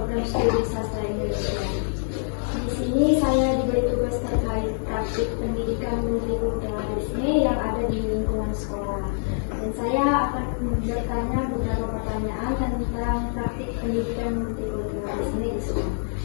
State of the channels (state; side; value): silent; right; digital silence